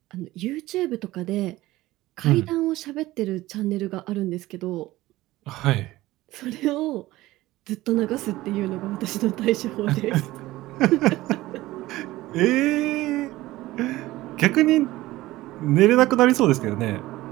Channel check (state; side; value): quieter; left; 17.5 dB